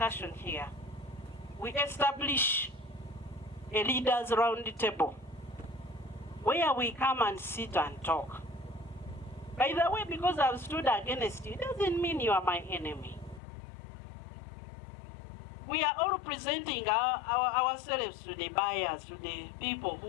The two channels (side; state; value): right; drops out; at 13.4 s